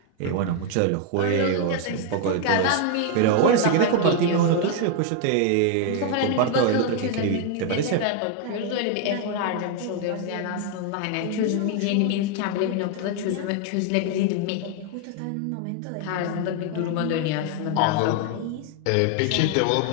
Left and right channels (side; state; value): both; different; correlation 0.00